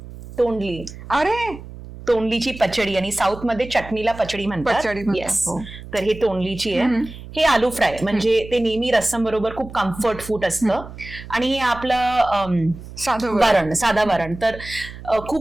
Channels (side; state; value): right; noise; hum, 14 dB below the sound